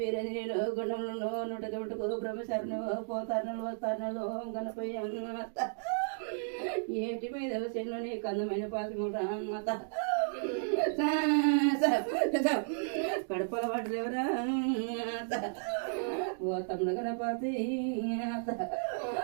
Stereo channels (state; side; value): silent; left; digital silence